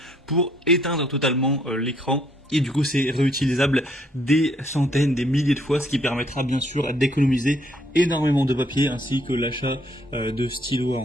pour éteindre totalement l'écran. Et du coup, c'est réutilisable des centaines, des milliers de fois, ce qui permettra bien sûr d'économiser énormément de papier, ainsi que l'achat de stylos à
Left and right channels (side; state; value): both; normal; correlation 0.67